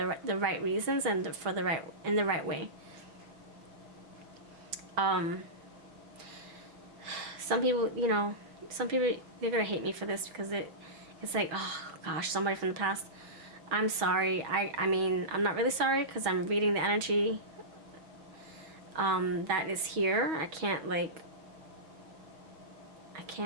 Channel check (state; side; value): late; left; 6.3 ms